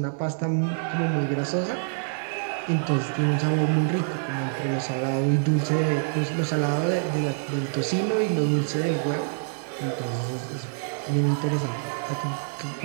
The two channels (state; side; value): silent; left; 61 dB below the other